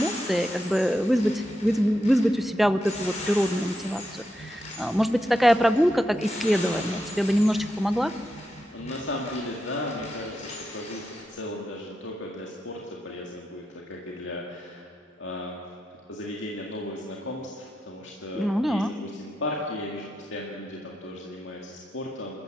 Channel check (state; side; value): normal; both; correlation 0.86